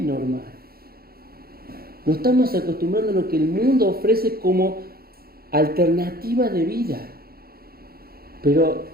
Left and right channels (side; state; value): left; late; 0.44 ms